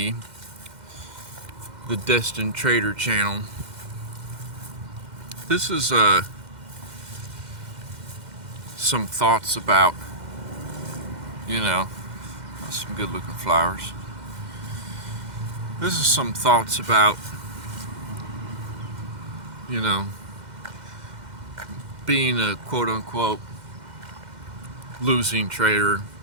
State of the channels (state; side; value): late; left; 2.1 ms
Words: the Destined Trader channel. This is some thoughts about, some good looking flowers. This is some thoughts about, being a quote unquote losing trader,